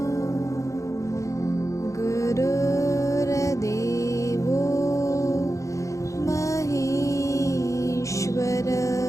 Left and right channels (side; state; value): right; late; 0.15 ms